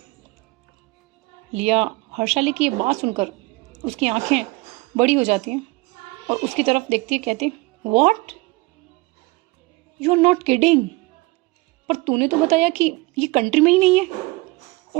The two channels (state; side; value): quieter; left; 23.8 dB